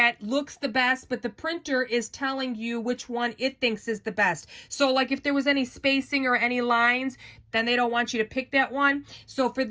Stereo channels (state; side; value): identical; both; correlation 1.00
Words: looks the best, but the printer is telling you which one it thinks is the best. So like if there was any spacing or any lines, then they don't want you to pick that one. So for